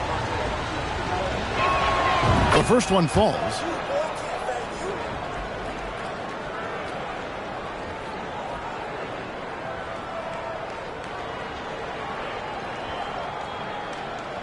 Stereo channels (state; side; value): identical; both; correlation 1.00